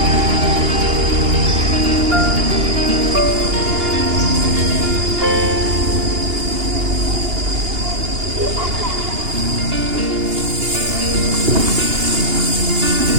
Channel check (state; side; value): late; left; 2.8 ms